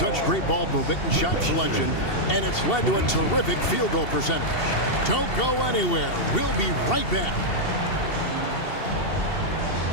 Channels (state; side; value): late; right; 2.7 ms